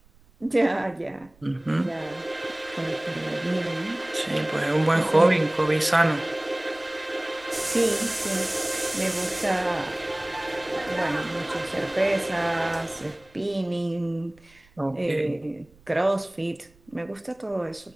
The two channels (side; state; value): right; noise; rumble, 29 dB below the sound